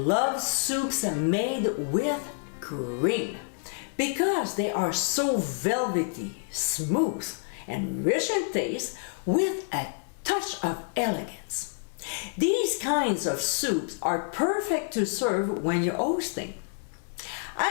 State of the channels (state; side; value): silent; right; digital silence